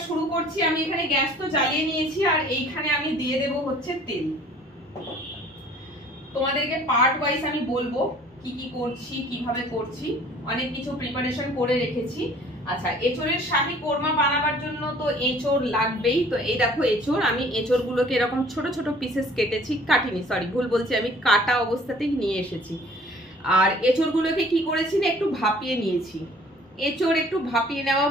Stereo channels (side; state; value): both; normal; correlation 0.53